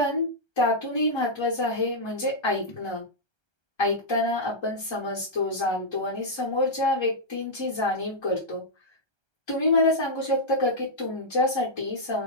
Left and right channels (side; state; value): right; late; 1.3 ms